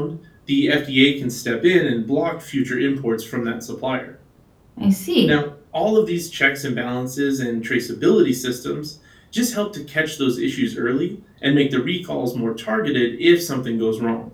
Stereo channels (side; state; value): both; identical; correlation 1.00